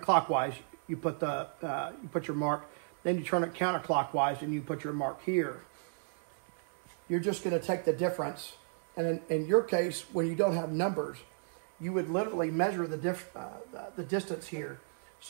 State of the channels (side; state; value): left; silent; 55 dB below the other